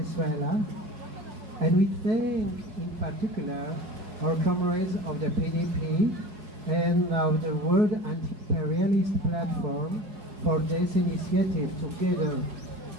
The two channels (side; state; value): left; late; 4.6 ms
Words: and we thank in particular our comrades of the PDP and of the World Anti-Imperialist Platform for this initiative together